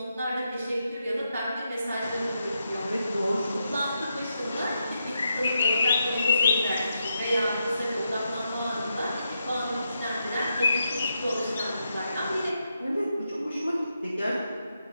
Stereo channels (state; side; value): inverted; both; correlation -0.83